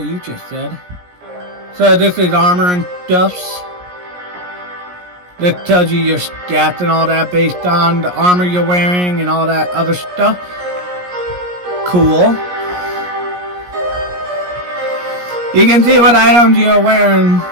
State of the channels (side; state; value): left; late; 17 ms